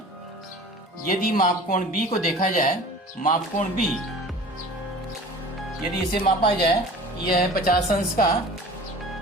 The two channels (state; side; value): normal; both; correlation 0.42